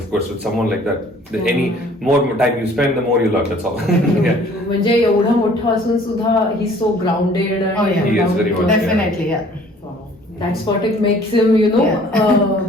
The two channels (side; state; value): both; normal; correlation 0.54